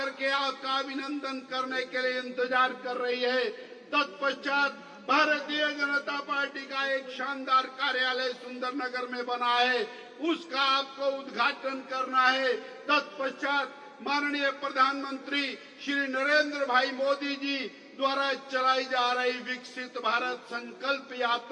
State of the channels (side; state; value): both; identical; correlation 1.00